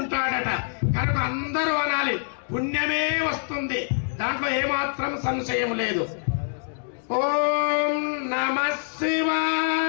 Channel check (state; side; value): silent; right; digital silence